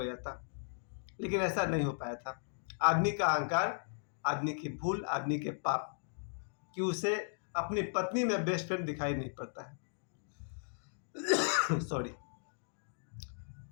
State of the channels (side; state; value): right; silent; digital silence